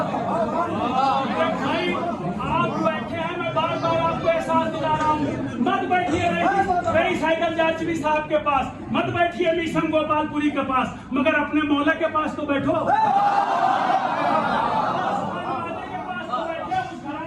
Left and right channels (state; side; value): identical; both; correlation 1.00